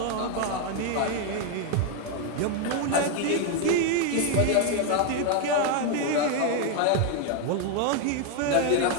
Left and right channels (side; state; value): both; different; correlation 0.01